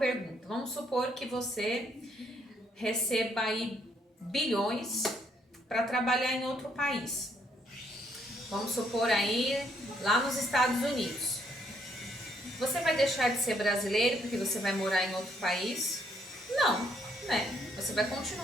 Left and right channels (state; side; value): normal; both; correlation 0.71